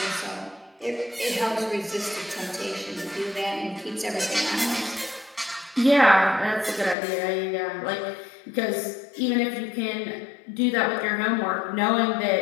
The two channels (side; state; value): right; drops out; at 7.0 s